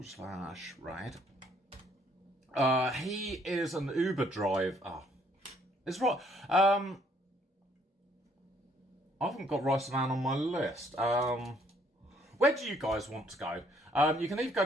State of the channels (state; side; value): normal; both; correlation 0.65